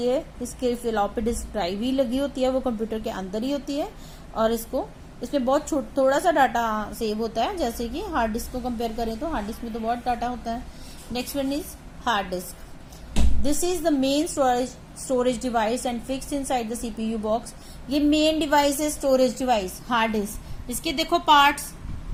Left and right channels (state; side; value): identical; both; correlation 1.00